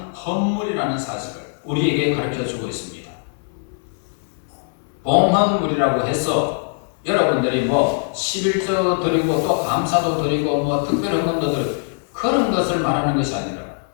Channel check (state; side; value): silent; right; 61 dB below the other